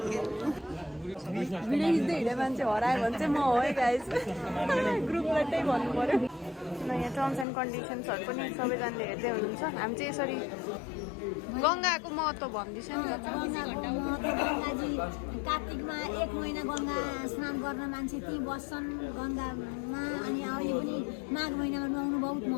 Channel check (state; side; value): drops out; right; at 7.5 s